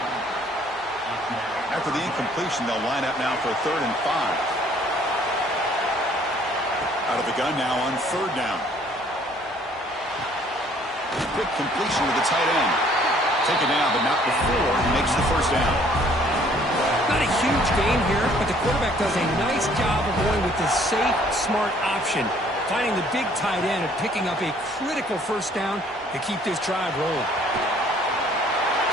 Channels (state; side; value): normal; both; correlation 0.59